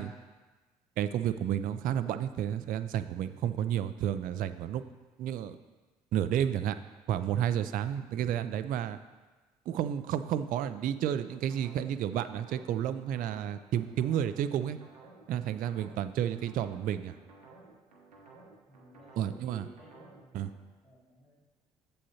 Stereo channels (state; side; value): quieter; left; 9.9 dB